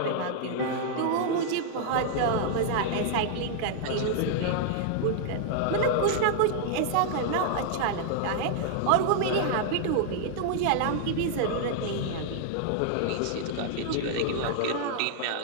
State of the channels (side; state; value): both; different; correlation -0.01